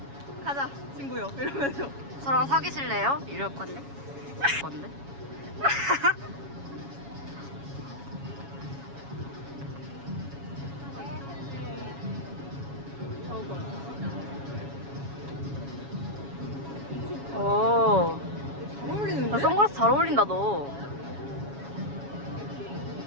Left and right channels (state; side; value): late; left; 7.2 ms